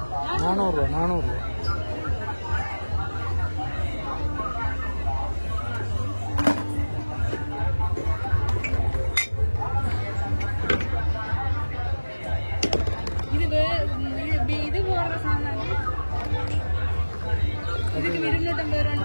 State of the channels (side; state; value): both; inverted; correlation -1.00